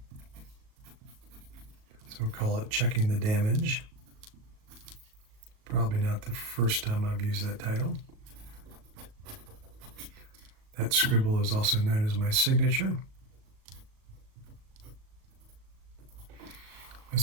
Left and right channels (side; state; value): left; late; 37 ms